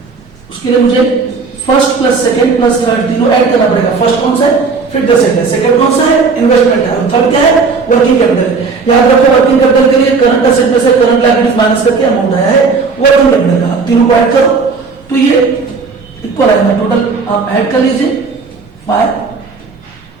उसके लिए मुझे first plus second plus third तीनों ऐड करना पड़ेगा। फर्स्ट कौन सा है फिक्स्ड एसेट है, सेकंड कौन सा है इन्वेस्टमेंट है और थर्ड क्या है वर्किंग कैपिटल। याद रखो वर्किंग कैपिटल के लिए करंट एसेट में से करंट लायबिलिटीज माइनस करके अमाउंट आया है वर्किंग कैपिटल का। तीनों को ऐड करो तो ये इक्वल आएगा, टोटल आप ऐड कर लीजिए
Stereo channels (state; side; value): quieter; left; 4.7 dB